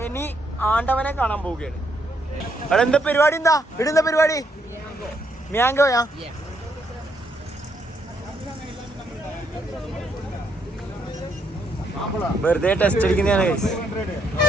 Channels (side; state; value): both; normal; correlation 0.74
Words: ആണ്ടവനെ കാണാൻ പോവുകയാണ്. അവിടെ എന്താ പരിപാടി? ഇടുന്ന പരിപാടി മ്യാങ്കോയാ? വെറുതെ ടെസ്റ്റ് അടിക്കുന്നതാണ്.